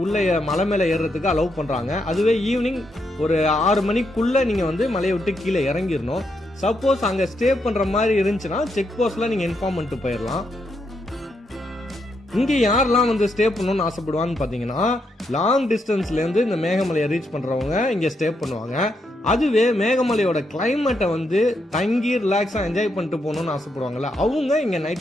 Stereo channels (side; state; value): both; normal; correlation 0.80